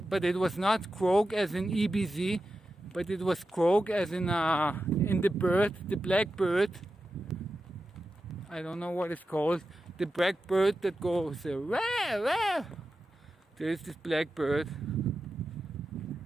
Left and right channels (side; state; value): both; normal; correlation 0.91